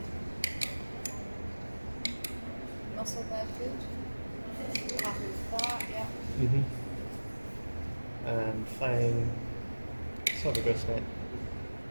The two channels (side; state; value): both; inverted; correlation -1.00